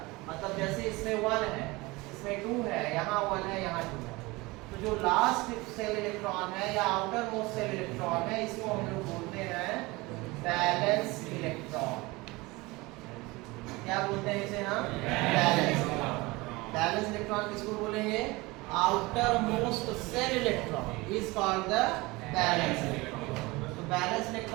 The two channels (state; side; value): quieter; left; 22.7 dB